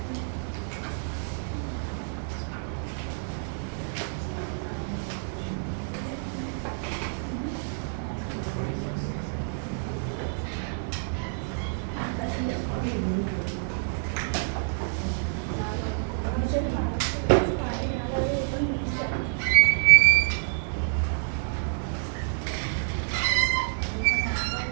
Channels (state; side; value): silent; left; 56 dB below the other